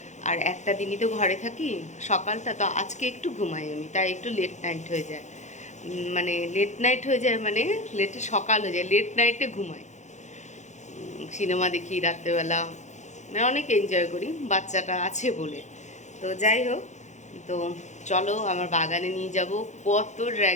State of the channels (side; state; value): right; late; 0.34 ms